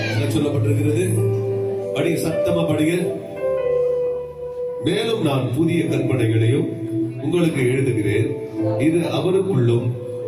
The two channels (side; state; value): both; identical; correlation 1.00